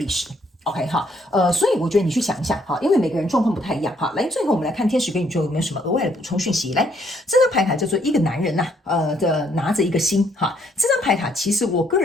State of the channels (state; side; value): normal; both; correlation 0.68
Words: 10 OK 哈，所以我觉得你去想一下哈，因为每个人状况不太一样哈。来，最后我们来看天使跟宇宙有没有什么额外的补充讯息。来，这张牌卡叫做一个男人呐、拿着一个心哈。这张牌卡其实我个